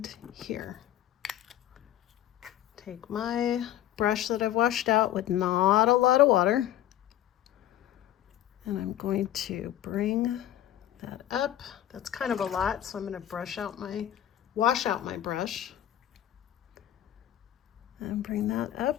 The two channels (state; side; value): quieter; right; 12.3 dB